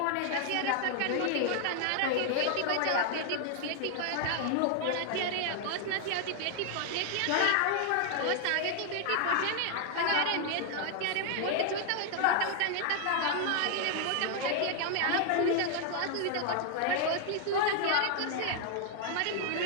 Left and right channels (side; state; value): both; different; correlation 0.00